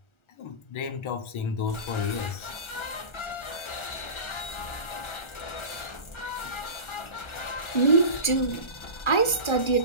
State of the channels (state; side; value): late; right; 1.4 ms